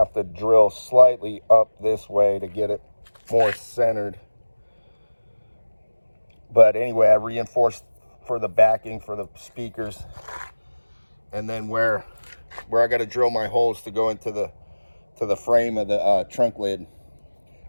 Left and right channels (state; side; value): inverted; both; correlation -1.00